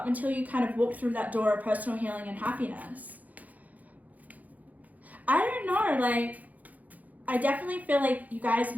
until you kind of walk through that door of personal healing and happiness. I don't know, like, I definitely feel like you guys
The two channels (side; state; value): left; late; 0.078 ms